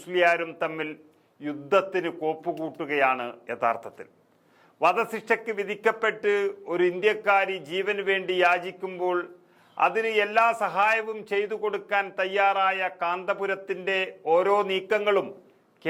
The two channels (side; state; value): both; identical; correlation 1.00